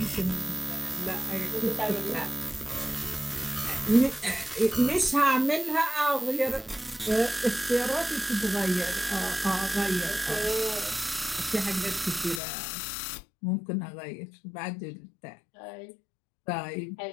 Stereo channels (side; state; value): right; drops out; at 12.4 s